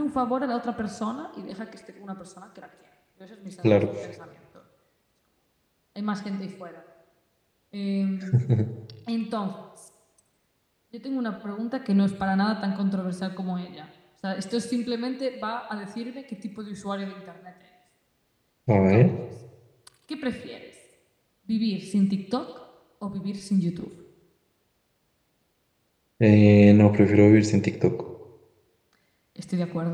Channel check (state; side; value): identical; both; correlation 1.00